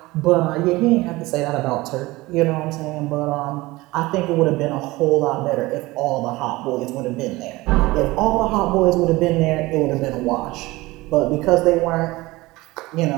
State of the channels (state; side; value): quieter; left; 20.3 dB